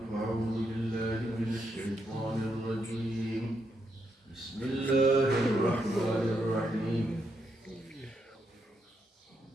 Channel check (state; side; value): normal; both; correlation 0.80